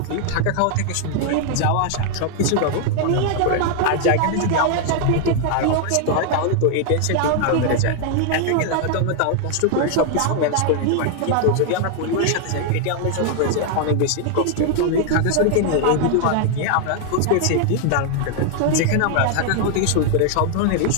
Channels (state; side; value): different; both; correlation 0.00